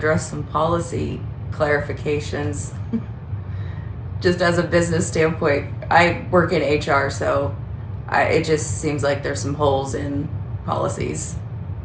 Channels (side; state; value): both; identical; correlation 1.00